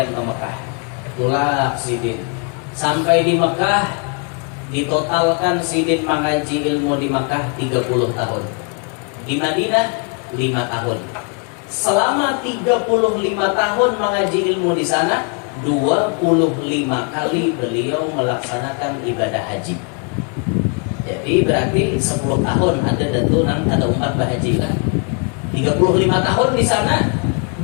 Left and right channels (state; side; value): quieter; right; 37.2 dB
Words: ke Mekah. Tulak Sidin. Sampai di Mekah ditotalkan Sidin mengaji ilmu di Mekah 30 tahun. Di Madinah 5 tahun. Selama 35 tahun mengaji ilmu di sana, 25 kali beliau melaksanakan ibadah haji. Jadi berarti 10 tahun ada umat berhaji lah. 35 tahun di sana,